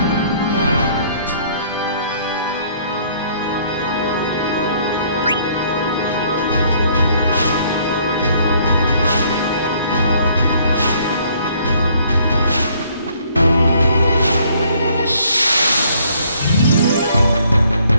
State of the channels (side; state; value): both; inverted; correlation -0.63